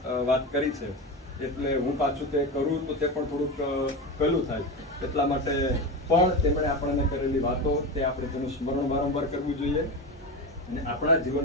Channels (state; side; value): normal; both; correlation 0.21